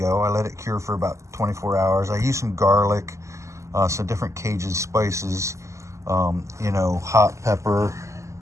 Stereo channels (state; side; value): late; left; 0.14 ms